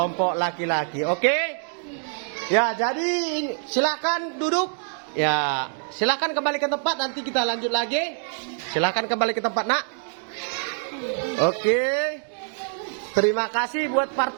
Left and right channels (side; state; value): left; silent; 57 dB below the other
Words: laki-laki. Oke? Ya, jadi silakan duduk. Ya, silakan kembali ke tempat, nanti kita lanjut lagi. Silakan kembali ke tempat, Nak. Oke. Terima kasih buat